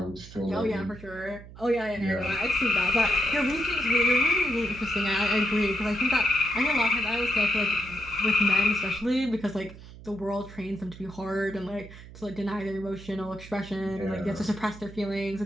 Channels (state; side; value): noise; right; hum, 17 dB below the sound